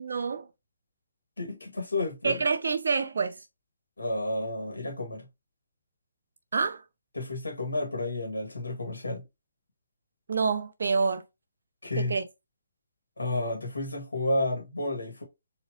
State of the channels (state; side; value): inverted; both; correlation -0.79